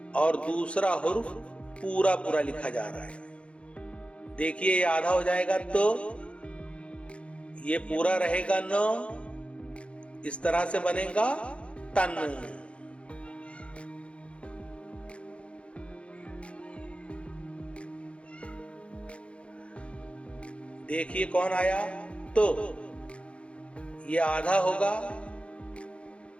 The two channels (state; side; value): late; right; 0.060 ms